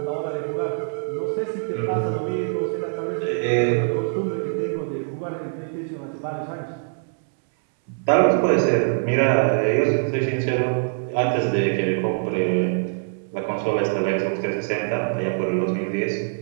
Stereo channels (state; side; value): silent; left; 63 dB below the other